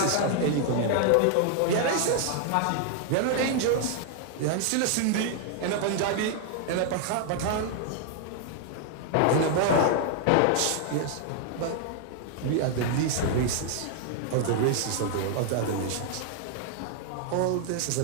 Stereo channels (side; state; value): both; different; correlation 0.00